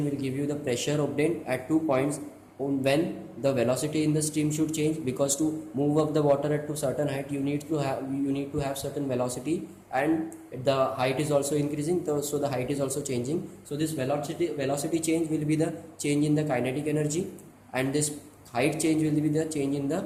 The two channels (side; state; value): both; identical; correlation 1.00